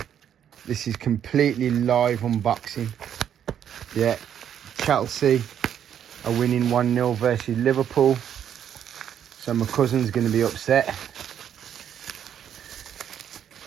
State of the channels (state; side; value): quieter; left; 9.4 dB